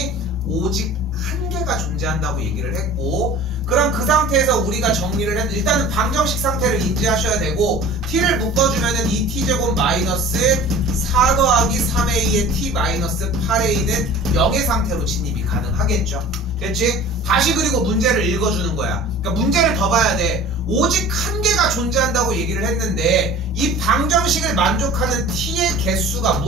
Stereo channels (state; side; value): normal; both; correlation 0.42